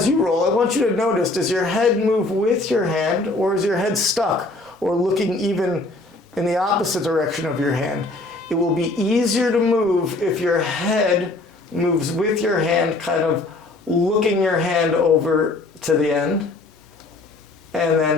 you roll, I want you to notice, does your head move with your hand, or is your head stuck or looking even in the opposite direction of your hand? It will be easier to move if your head moves with your hand, kind of looking your hand over to the end, and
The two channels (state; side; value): quieter; right; 3.1 dB